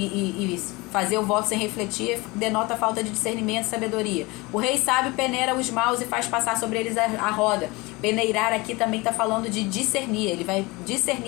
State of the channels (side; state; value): right; quieter; 23.9 dB